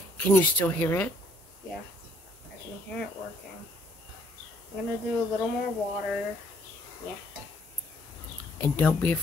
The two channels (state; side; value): normal; both; correlation 0.65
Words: Can you still hear it? Yeah, I can hear it working. I'm gonna do a little more water. Yeah. And don't be